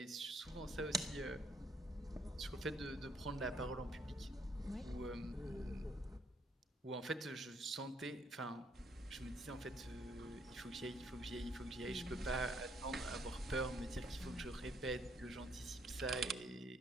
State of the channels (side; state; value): both; normal; correlation 0.68